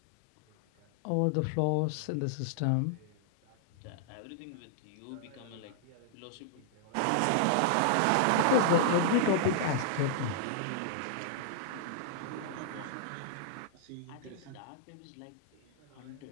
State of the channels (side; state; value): both; different; correlation -0.01